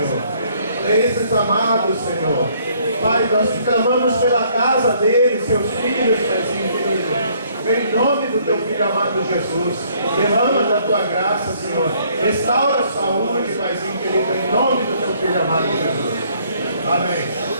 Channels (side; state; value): both; inverted; correlation -0.64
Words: a esses amados, Senhor. Pai, nós te clamamos pela casa deles, seus filhos, Pai querido. Em nome do teu Filho amado Jesus, derrama da tua graça, Senhor. Restaura a saúde, Paizinho querido, em nome do teu Filho amado Jesus. Amém.